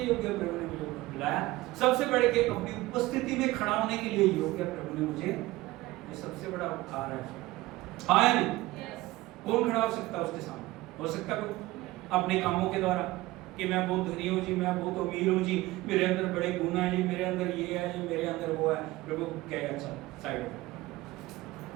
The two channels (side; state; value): left; quieter; 18.6 dB